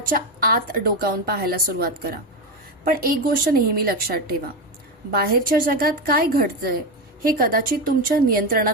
आत डोकावून पाहायला सुरुवात करा. पण एक गोष्ट नेहमी लक्षात ठेवा, बाहेरच्या जगात काय घडतंय हे कदाचित तुमच्या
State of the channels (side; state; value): both; normal; correlation 0.14